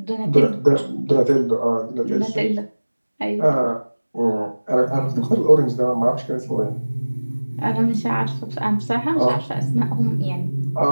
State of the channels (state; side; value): inverted; both; correlation -1.00